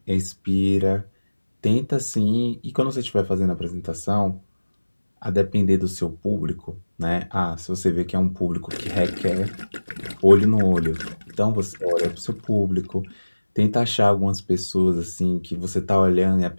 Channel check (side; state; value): both; inverted; correlation -1.00